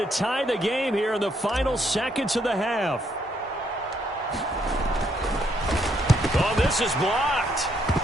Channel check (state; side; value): normal; both; correlation 0.72